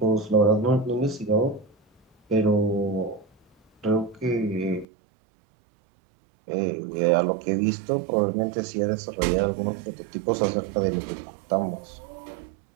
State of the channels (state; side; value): drops out; left; at 4.9 s